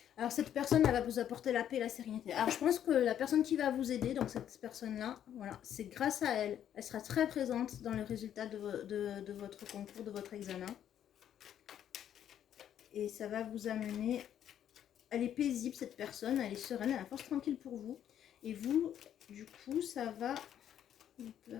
Alors cette personne elle va vous apporter la paix et la sérénité. Alors je pense que la personne qui va vous aider, donc cette personne-là, voilà, c'est grâce à elle. Elle sera très présente dans le résultat de votre concours, de votre examen. Et ça va vous amener... Elle est paisible cette personne, elle est sereine, elle a la force tranquille pour vous. Et vous, du coup, ça va vous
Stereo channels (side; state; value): right; quieter; 10.1 dB